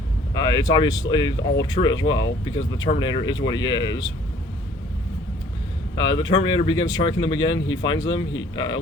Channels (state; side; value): normal; both; correlation 0.56